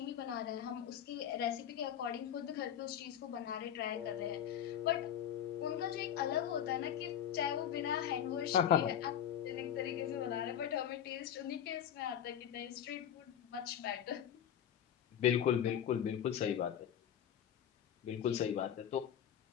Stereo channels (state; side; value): quieter; right; 9.7 dB